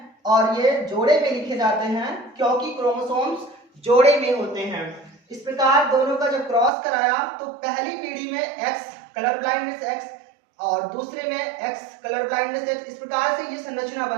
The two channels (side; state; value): left; drops out; at 6.7 s